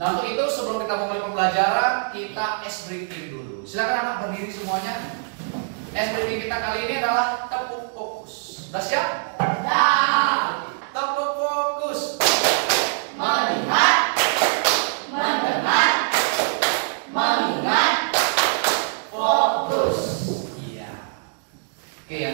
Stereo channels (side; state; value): left; silent; digital silence